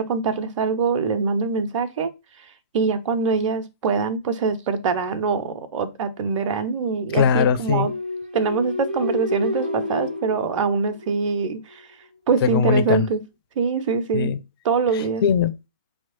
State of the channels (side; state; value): both; inverted; correlation -0.34